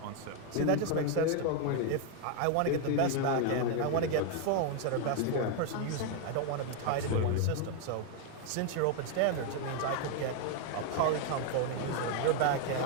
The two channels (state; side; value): different; both; correlation 0.01